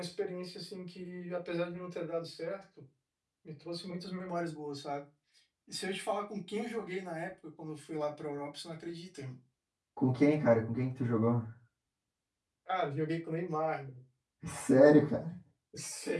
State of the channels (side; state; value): both; identical; correlation 1.00